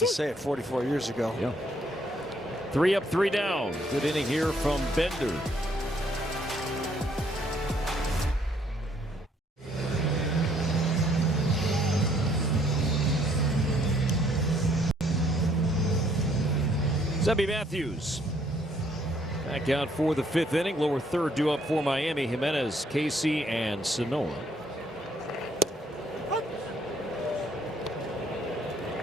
say it, 44 years ago. Yeah. 3 up, 3 down. Good inning here from Bender. Zebby Matthews back out for the 5th inning. Lower third due up for Miami. Jimenez, Casey, and Sanoa.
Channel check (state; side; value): normal; both; correlation 0.66